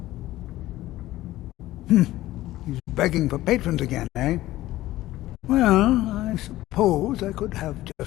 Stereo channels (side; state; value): right; quieter; 15.9 dB